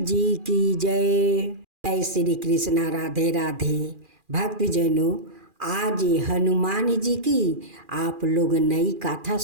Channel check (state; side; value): late; left; 2.4 ms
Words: की जय। जय श्री कृष्णा, राधे राधे। भक्तजनों, आज हनुमान जी की आप लोग नई गाथा